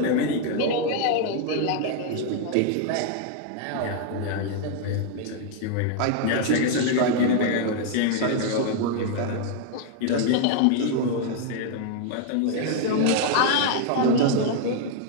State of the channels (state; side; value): different; both; correlation 0.00